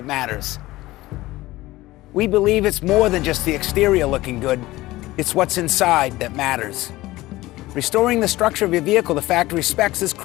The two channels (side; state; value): right; quieter; 18.1 dB